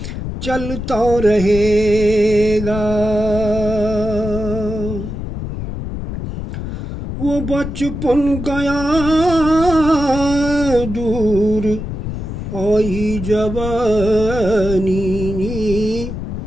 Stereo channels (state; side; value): noise; left; rumble, 6 dB below the sound